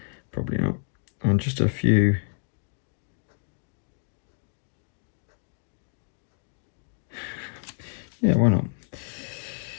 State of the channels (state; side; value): silent; right; digital silence